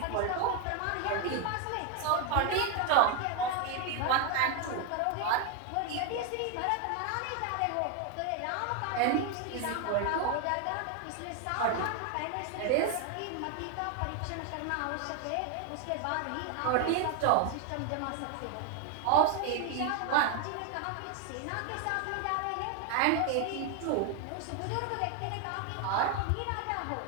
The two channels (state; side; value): different; both; correlation 0.01